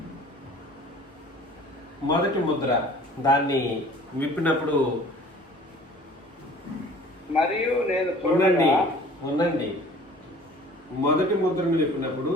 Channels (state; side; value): normal; both; correlation 0.48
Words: మొదటి ముద్ర దాన్ని విప్పినప్పుడు మరియు నేను ఉండండి. మొదటి ముద్రను విప్పినప్పుడు